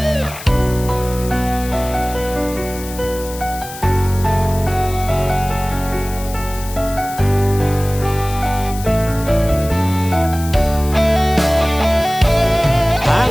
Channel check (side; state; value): left; noise; hiss, 14 dB below the sound